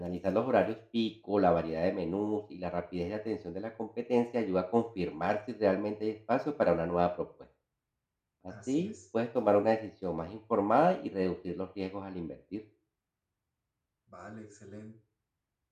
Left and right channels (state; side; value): identical; both; correlation 1.00